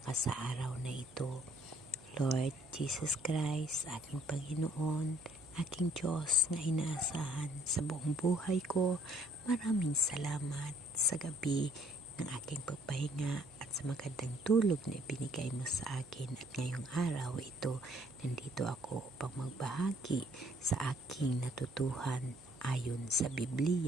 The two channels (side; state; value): right; noise; hum, 24 dB below the sound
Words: ka sa araw na ito. Lord Jesus Christ, aking Panginoon, aking Diyos na inaasahan sa buong buhay ko, maraming salamat sa gabi ng aking pagpahinga at sa magandang tulog na ibinigay mo sa akin. At ngayong araw ito, nandito ako upang magbahagi sa aking natutuhan ayon sa